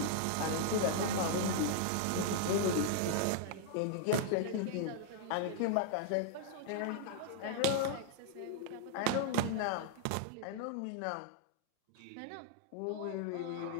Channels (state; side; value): different; both; correlation -0.01